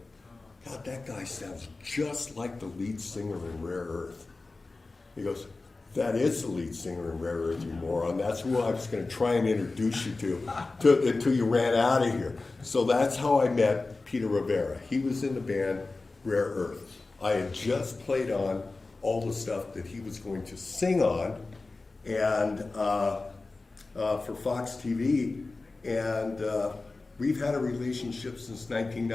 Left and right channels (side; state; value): right; quieter; 3.5 dB